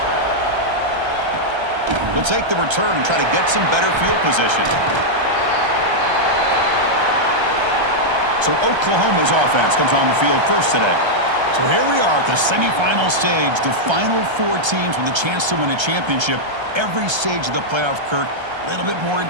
They'll take the return and try to get some better field position. So Oklahoma's offense comes on the field first today. So here we are at the semifinal stage, the final four teams with a chance to win a championship. Every stage of the playoff, Kirk, a little bit more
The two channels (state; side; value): late; left; 1.3 ms